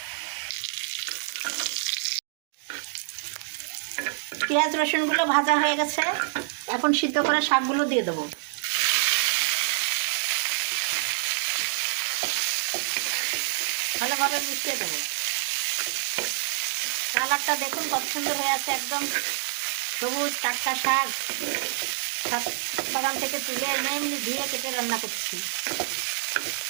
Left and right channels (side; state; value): left; silent; digital silence